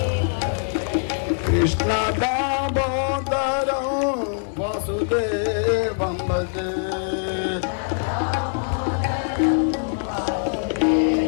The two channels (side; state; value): right; silent; digital silence